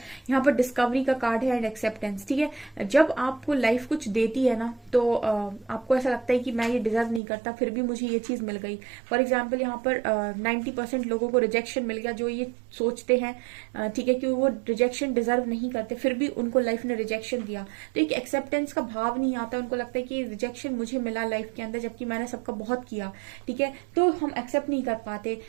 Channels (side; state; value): left; drops out; at 7.2 s